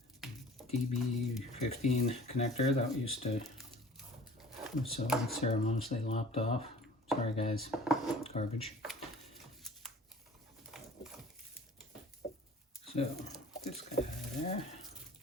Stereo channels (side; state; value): both; normal; correlation 0.46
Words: DB15 connector that used to so unceremoniously lopped off. Sorry guys, garbage. So this guy out of there.